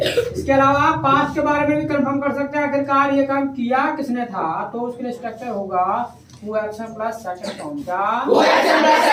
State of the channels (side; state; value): both; identical; correlation 1.00